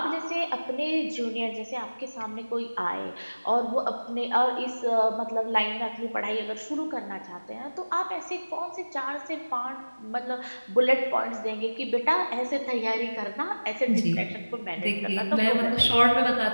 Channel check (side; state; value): both; inverted; correlation -1.00